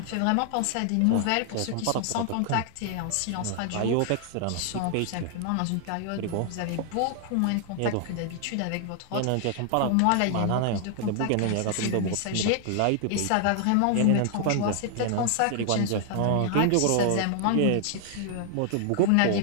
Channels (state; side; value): different; both; correlation 0.00